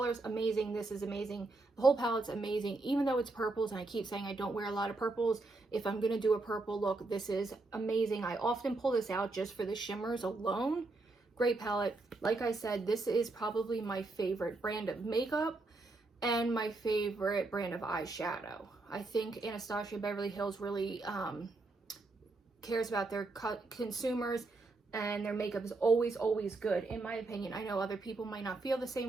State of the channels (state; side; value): quieter; left; 3.3 dB